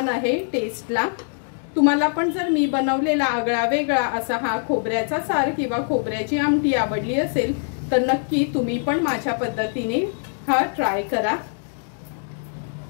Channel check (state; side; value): silent; right; 61 dB below the other